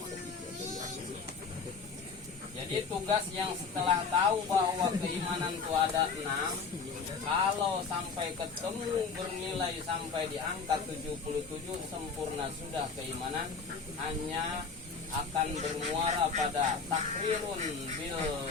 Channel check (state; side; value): quieter; right; 5.1 dB